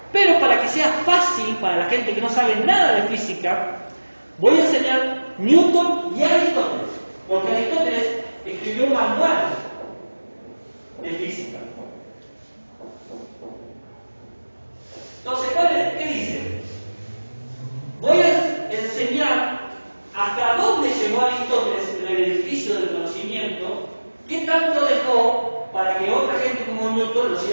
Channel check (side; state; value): both; inverted; correlation -1.00